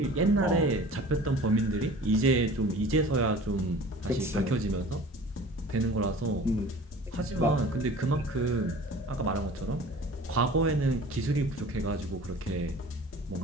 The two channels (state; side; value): normal; both; correlation 0.43